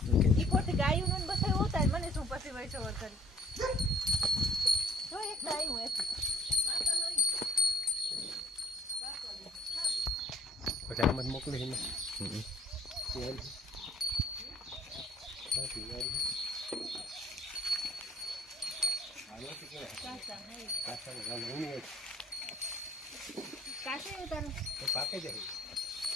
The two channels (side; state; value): both; normal; correlation 0.60